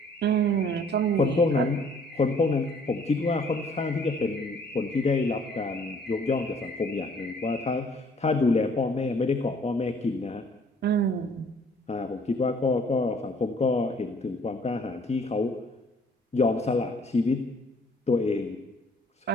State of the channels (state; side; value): normal; both; correlation 0.58